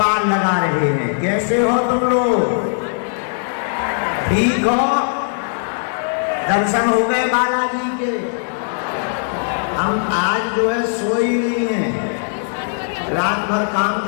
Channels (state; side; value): silent; right; 67 dB below the other